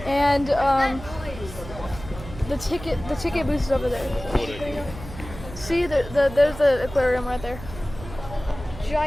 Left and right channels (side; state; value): right; noise; hum, 13 dB below the sound